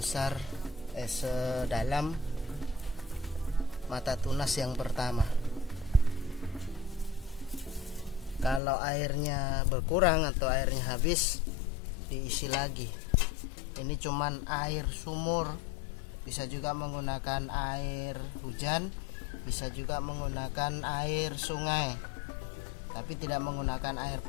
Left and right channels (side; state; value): right; drops out; at 8.6 s